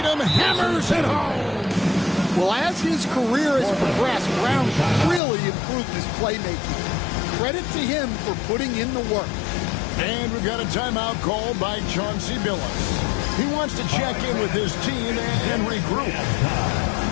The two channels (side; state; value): right; drops out; at 5.2 s